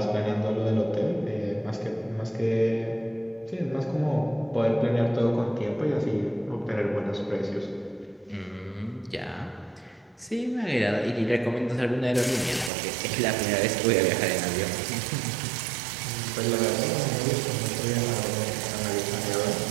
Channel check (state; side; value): drops out; left; at 12.7 s